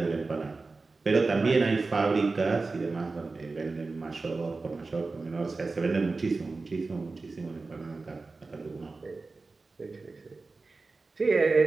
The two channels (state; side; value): quieter; left; 3.8 dB